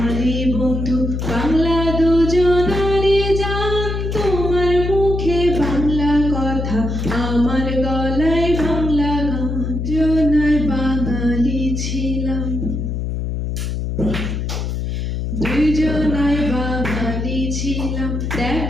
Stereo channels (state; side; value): noise; left; hum, 2 dB below the sound